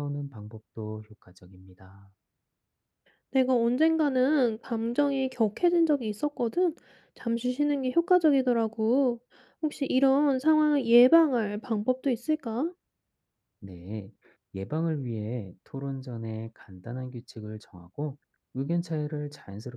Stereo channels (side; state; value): both; identical; correlation 1.00